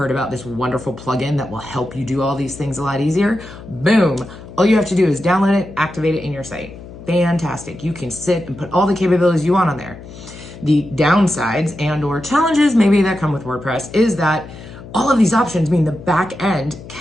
about this wonderful plugin that will help you do all these things a lot easier? Boom. All you have to do is download it, activate it in your site. Fantastic. You can sit and put all the capabilities you want on there. The downsides and or challenges maybe that come with WordPress is that all of these options mean the back end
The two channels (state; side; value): noise; left; hum, 16 dB below the sound